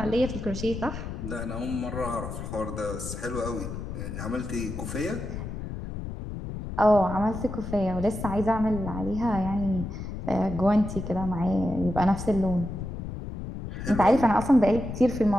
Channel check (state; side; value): noise; left; rumble, 7 dB below the sound